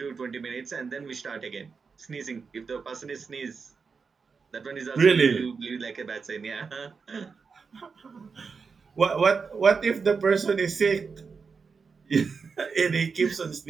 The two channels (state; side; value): quieter; left; 5.2 dB